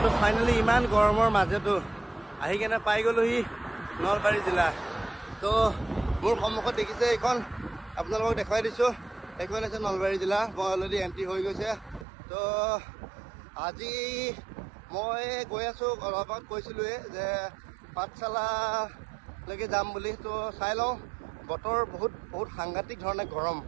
তো ফাইনেলি ইমান গৰমৰ মাজতো আহি কেনে পাই গ'লোহি নলবাৰী জিলা। তো মোৰ সন্মুখত দেখিছে এইখন, আপোনালোকক দেখুৱাই দিছোঁ, এইখন আছে নলবাৰী জিলা। মই অলৰেডি এণ্ট্ৰি হৈ গৈছে। তো আজি মই গৈ আছোঁ, অলপ আগত কৈছিলোঁৱে যে পাঠশালালৈকে যাম বুলি। তো চাই লওঁ, বতৰ বহুত সাংঘাতিক ধৰণে গৰম।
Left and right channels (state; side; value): drops out; left; at 12.1 s